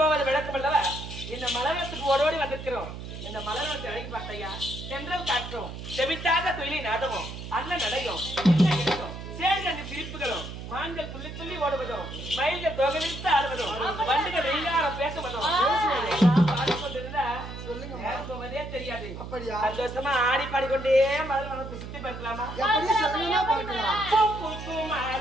விளக்கம் அல்லவா? இந்த மலவனத்துக்கு ஓடோடி வந்திருக்கிறோம். இந்த மலவனத்தை அழகி பார்த்தையா, சென்றல் காற்றும் செவிட்டாத தொழிலை நாடவும் அண்ணன் நடையும் சேர்ந்த சிரிப்புகளும் மான்கள் துள்ளி துள்ளி ஓடுவதும் மயில்கள் தொகை விரித்து ஆடுவதும் வண்டுகள் வெயிலாரம் பேசுவதும் பாடிக்கொண்டிருந்தா நேரம் போவதே தெரியாது. சந்தோஷமா ஆடி பாடிக்கொண்டே மலவனத்தை சுத்தி பார்க்கலாமா?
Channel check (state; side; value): noise; right; hum, 10 dB below the sound